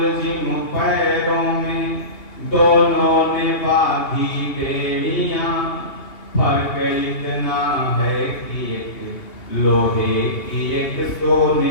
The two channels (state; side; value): late; right; 2.7 ms